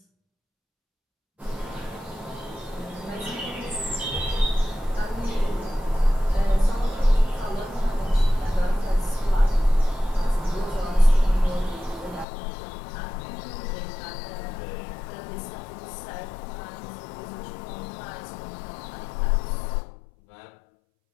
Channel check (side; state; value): right; drops out; at 12.2 s